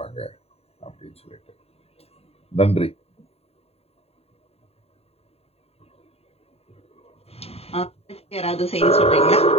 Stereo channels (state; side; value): late; right; 0.29 ms